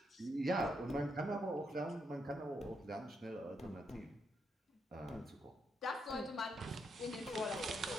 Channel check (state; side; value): normal; both; correlation 0.79